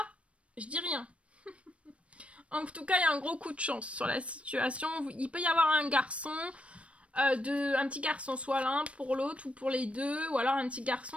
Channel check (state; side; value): late; left; 0.062 ms